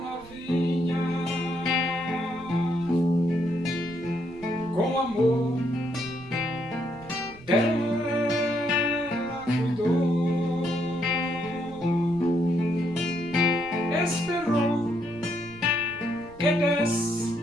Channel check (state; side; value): noise; right; rumble, 21 dB below the sound